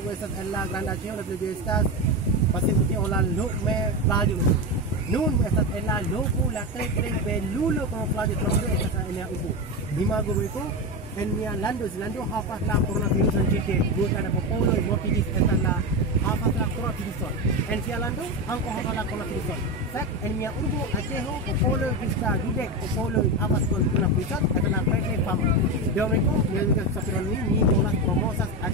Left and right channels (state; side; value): normal; both; correlation 0.16